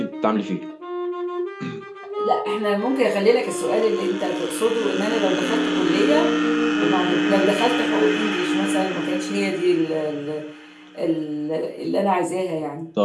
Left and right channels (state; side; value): identical; both; correlation 1.00